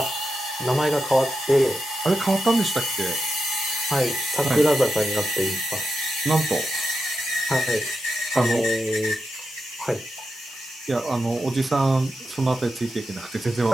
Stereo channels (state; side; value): normal; both; correlation 0.87